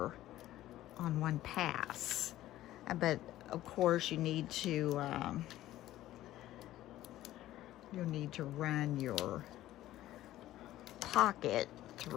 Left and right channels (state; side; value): quieter; right; 14.5 dB